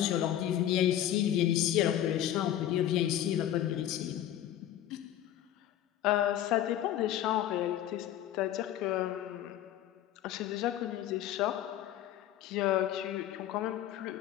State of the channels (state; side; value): quieter; right; 11.9 dB